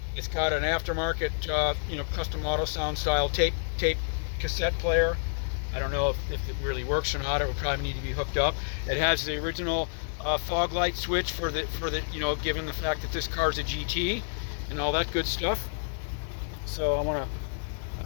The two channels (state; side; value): silent; right; 59 dB below the other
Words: It's got an aftermarket you know, custom auto sound style tape cassette player. I don't know if it really works or not. It would probably need to be hooked up. It has the original fog light switch for the you know, given the fact that this car's a GT and all that good stuff. So